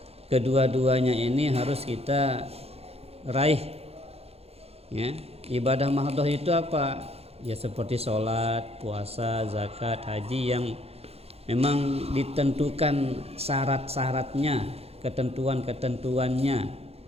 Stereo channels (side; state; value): left; late; 0.29 ms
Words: Kedua-duanya ini harus kita raih, ya. Ibadah mahdhah itu apa? Ya seperti sholat, puasa, zakat, haji yang memang ditentukan syarat-syaratnya, ketentuan-ketentuannya.